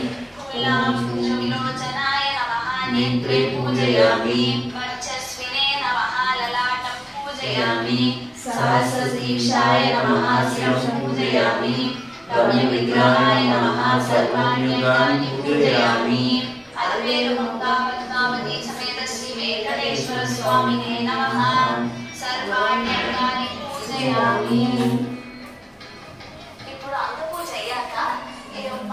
फूलांशुविलोचनाय नमः नेत्रे पूजयामि वर्चस्विने नमः ललाटं पूजयामि सहस्रशीर्षाय नमः शिरं पूजयामि रम्यविग्रहाय नमः सर्वाण्यङ्गानि पूजयामि अल्वेलुमङ्गा पद्मावती समेत श्री वेंकटेश्वर स्वामिने नमः सर्वाण्यङ्गानि पूजयामि। ఇప్పుడు అంత పూజ అయ్యాక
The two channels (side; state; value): both; identical; correlation 1.00